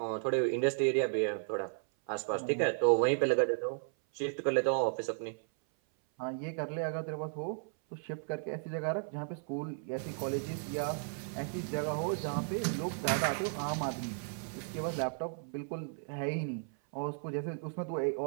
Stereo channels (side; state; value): left; silent; 55 dB below the other